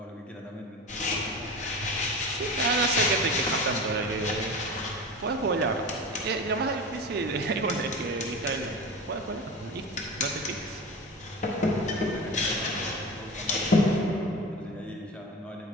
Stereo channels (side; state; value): both; normal; correlation 0.30